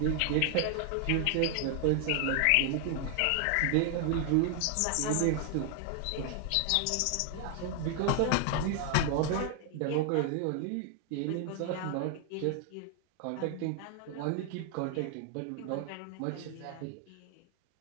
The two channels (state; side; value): different; both; correlation 0.00